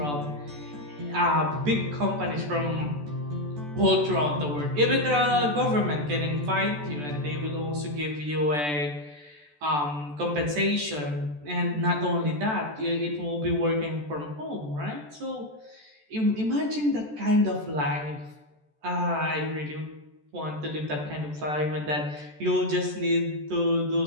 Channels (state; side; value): late; left; 14 ms